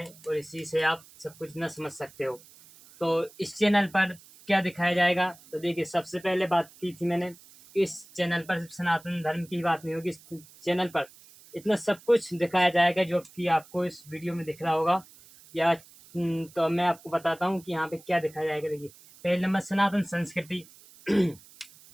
और इसी से आप सब कुछ न समझ सकते हो। तो इस चैनल पर क्या दिखाया जाएगा, तो देखिए, सबसे पहले बात की थी मैंने कि इस चैनल पर सिर्फ सनातन धर्म की बात नहीं होगी। इस चैनल पर इतना सब कुछ दिखाया जाएगा जो कि आपको इस वीडियो में दिख रहा होगा। या तो मैं आपको बताता हूँ कि यहाँ पे क्या दिखाया जाएगा। देखिए, पहले नंबर सनातन संस्कृति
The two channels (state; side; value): noise; right; hiss, 23 dB below the sound